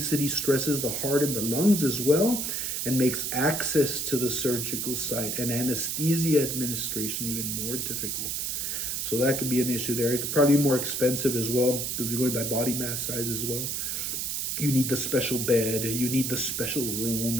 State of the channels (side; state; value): right; noise; hiss, 2 dB below the sound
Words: stresses the heart and the lungs as well, and makes access to the surgical site and anesthesia administration even more difficult. So that could be an issue there. It could probably be more expensive as well, because you're going by body mass size as well. You need the special bed, you need the special room,